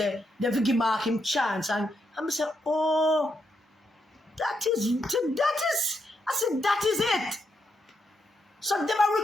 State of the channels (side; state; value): both; normal; correlation 0.80